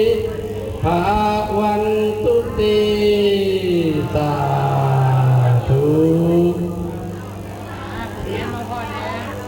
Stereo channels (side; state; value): both; identical; correlation 1.00